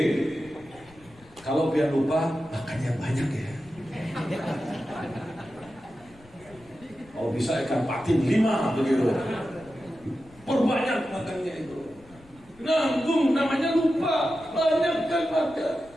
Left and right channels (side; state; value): left; noise; rumble, 26 dB below the sound